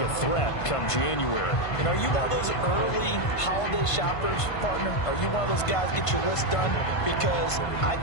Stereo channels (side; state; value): right; late; 1.5 ms